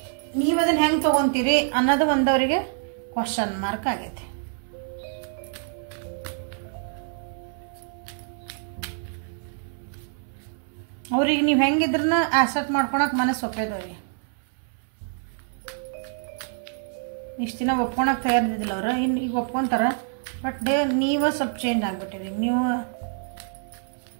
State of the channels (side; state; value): left; silent; 61 dB below the other